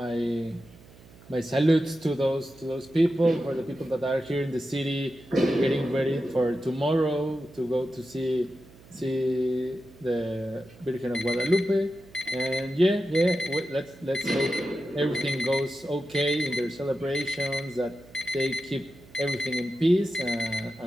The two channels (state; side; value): noise; right; hum, 23 dB below the sound